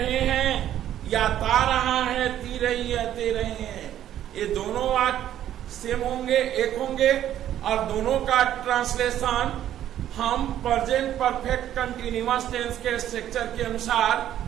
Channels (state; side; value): quieter; left; 11.5 dB